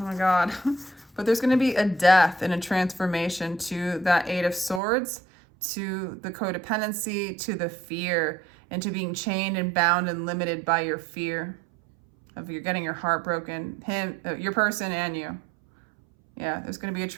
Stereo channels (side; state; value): left; drops out; at 4.8 s